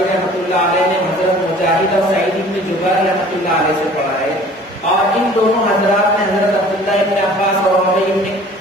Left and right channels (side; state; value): both; normal; correlation 0.49